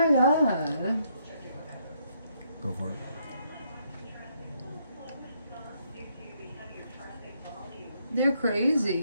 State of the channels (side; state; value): both; inverted; correlation -0.74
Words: god. Go for it. They're